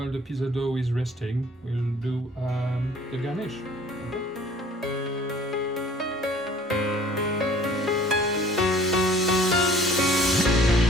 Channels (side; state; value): both; normal; correlation 0.52